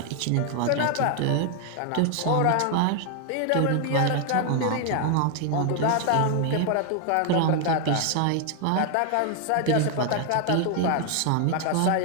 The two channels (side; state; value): both; different; correlation 0.00